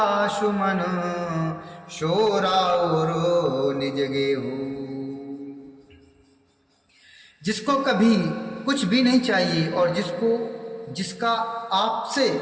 सुमन, शोराउर निज गेहु। जिसको कभी कुछ भी नहीं चाहिए और जिसका आपसे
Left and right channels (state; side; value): identical; both; correlation 1.00